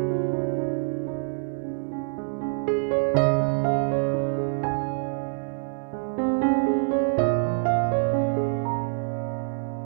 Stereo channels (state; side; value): silent; left; digital silence